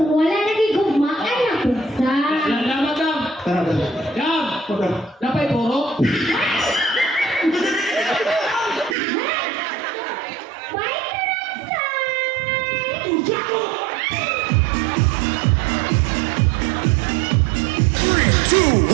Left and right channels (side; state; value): left; drops out; at 9.0 s